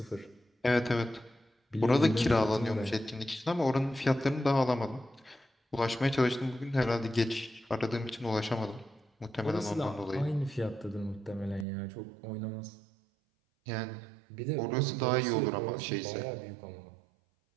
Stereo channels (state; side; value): drops out; left; at 11.7 s